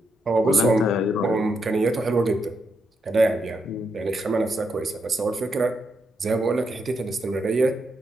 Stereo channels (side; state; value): both; normal; correlation 0.81